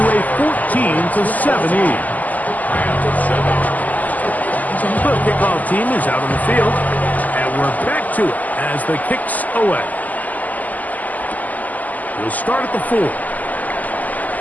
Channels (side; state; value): right; late; 0.080 ms